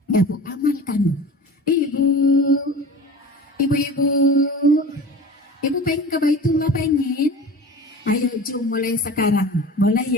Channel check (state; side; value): normal; both; correlation 0.37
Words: Ya Bu, amalkan. Ibu pengen ke Baitullah, pengen? Ayo jom mulai sekarang. Boleh